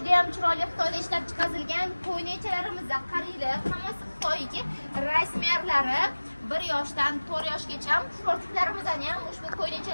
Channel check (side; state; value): both; inverted; correlation -1.00